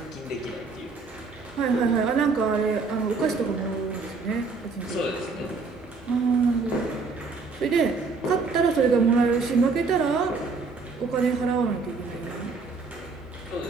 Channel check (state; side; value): quieter; left; 4.4 dB